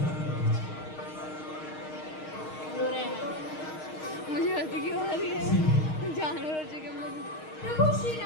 कर दीजिए। रो रहे हैं, मुझे हंसी क्यों आ रही है, जानवर हो चुके हम लोग। प्रभु श्री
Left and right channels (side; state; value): right; late; 6.4 ms